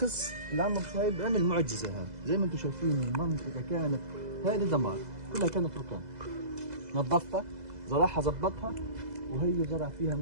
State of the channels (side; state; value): left; late; 2.0 ms